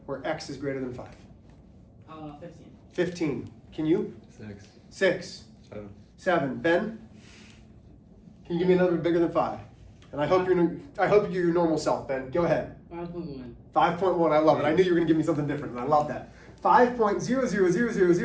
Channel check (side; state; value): both; identical; correlation 1.00